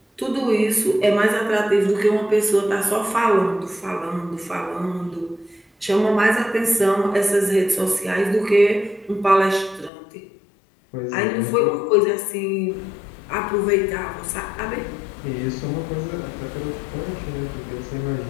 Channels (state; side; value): drops out; right; at 9.9 s